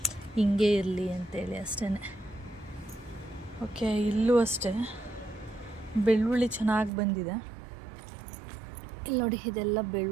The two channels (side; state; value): left; drops out; at 6.9 s